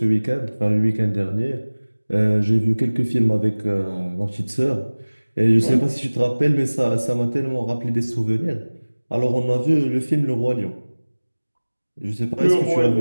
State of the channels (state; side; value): inverted; both; correlation -1.00